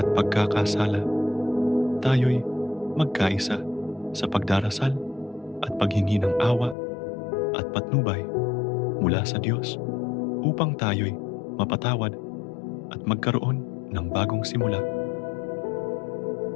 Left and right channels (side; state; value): right; drops out; at 6.8 s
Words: pagkakasala. Tayo'y magkaisa sa pagdarasal at paghingi ng awa at patnubay mula sa Diyos upang tayo'y mapatawad at magkaroon ng bagong simula.